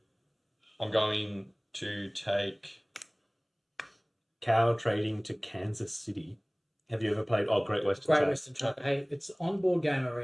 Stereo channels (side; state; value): both; identical; correlation 1.00